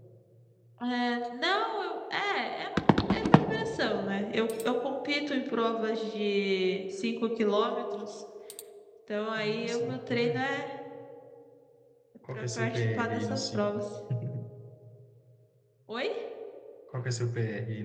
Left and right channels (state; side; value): identical; both; correlation 1.00